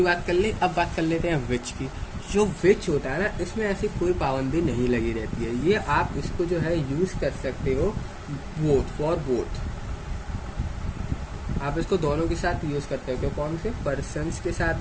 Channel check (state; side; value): identical; both; correlation 1.00